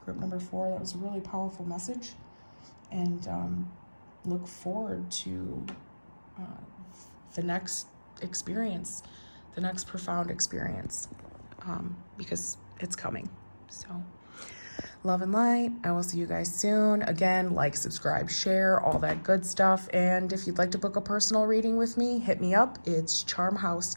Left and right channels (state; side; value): inverted; both; correlation -1.00